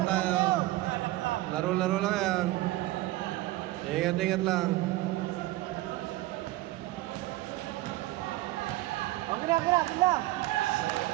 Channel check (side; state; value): left; quieter; 17.8 dB